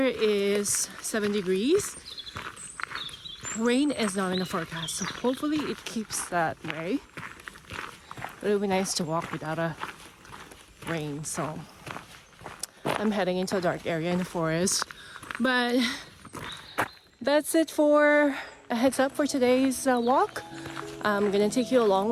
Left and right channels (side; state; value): both; identical; correlation 1.00